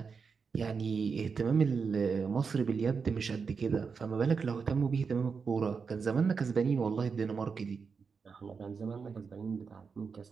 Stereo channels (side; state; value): left; quieter; 5.5 dB